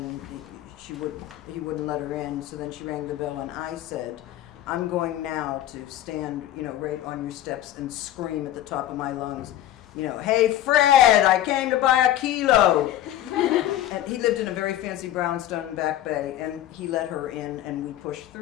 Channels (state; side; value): quieter; right; 13.0 dB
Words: and he wouldn't let her in. So then she rang the bell and I said, I'm going now to stand, right on your steps and scream at the top of my lungs, hey Fred, I came to buy a kilo. And he lived in a very fancy brownstone in Back Bay, and he let her in and we pushed